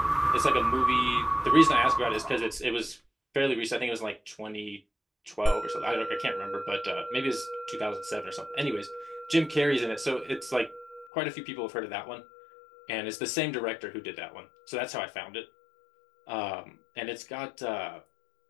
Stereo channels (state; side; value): drops out; right; at 11.1 s